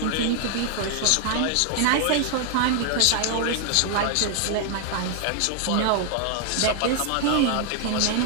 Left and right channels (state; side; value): different; both; correlation 0.00